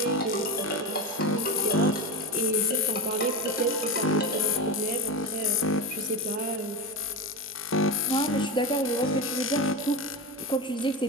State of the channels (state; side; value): normal; both; correlation 0.18